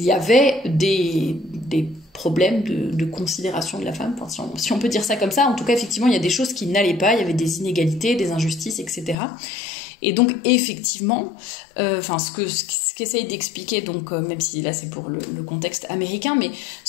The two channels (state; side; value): drops out; right; at 9.2 s